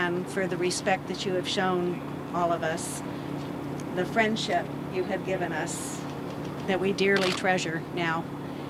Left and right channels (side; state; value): both; identical; correlation 1.00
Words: for the respect that you have shown all of us, the friendship you have given us that we dearly treasure now.